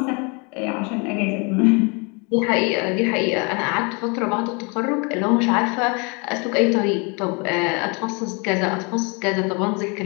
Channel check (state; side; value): quieter; right; 31.7 dB